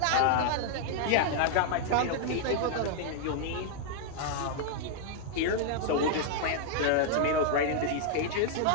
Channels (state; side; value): different; both; correlation -0.01